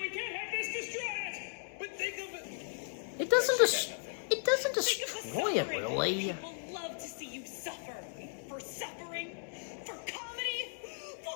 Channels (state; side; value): silent; right; 54 dB below the other